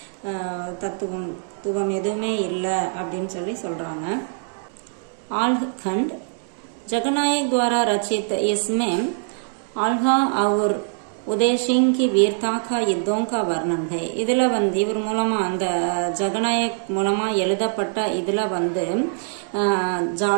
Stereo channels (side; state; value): left; silent; digital silence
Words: தத்துவம் எதுவுமே இல்லை அப்படின்னு சொல்றாங்க. आल्हखंड जगनायक द्वारा रचित. इसमें आल्हा और उदय सिंह की वीरता का युद्धों का वर्णन है. இதுல வந்து இவர் மூலமா அந்த ஜகநாயக் மூலமா எழுதப்பட்ட இதுல வந்து